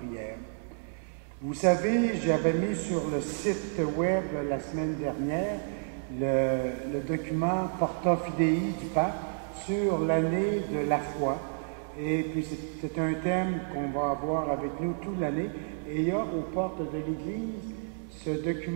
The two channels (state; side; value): silent; left; 58 dB below the other